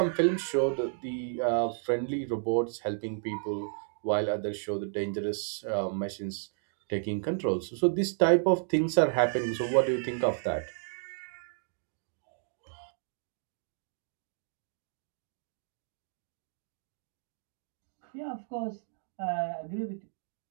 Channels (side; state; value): left; silent; digital silence